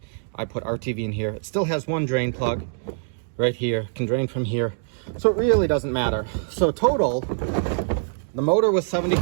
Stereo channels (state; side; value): silent; left; digital silence